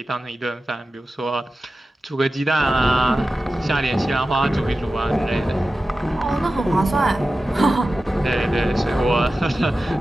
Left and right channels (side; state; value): both; normal; correlation 0.94